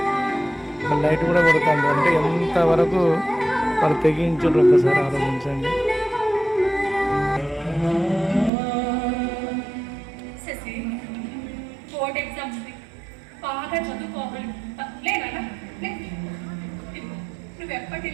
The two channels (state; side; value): drops out; left; at 8.5 s